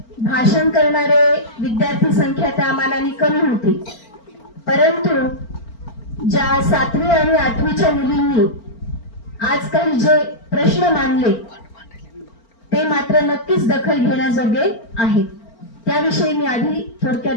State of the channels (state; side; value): late; right; 4.4 ms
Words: भाषण करणारे विद्यार्थी संख्या त्या मानाने कमी होती, परंतु ज्या 7वी आणि 8वीच्या मुलींनी आज काही जे प्रश्न मांडले ते मात्र नक्कीच दखल घेण्याजोगे आहेत। त्याविषयी मी आधी थोडक्यात